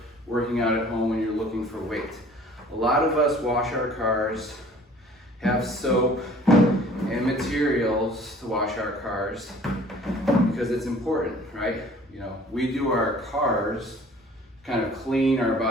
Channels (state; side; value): normal; both; correlation 0.51